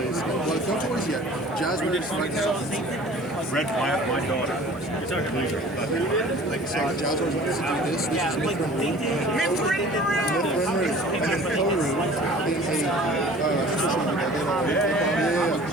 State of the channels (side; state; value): right; noise; hiss, 30 dB below the sound